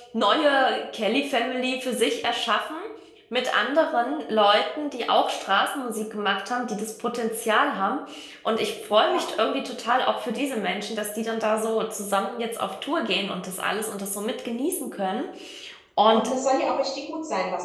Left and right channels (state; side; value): identical; both; correlation 1.00